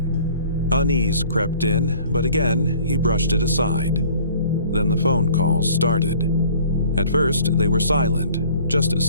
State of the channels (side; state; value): both; inverted; correlation -0.53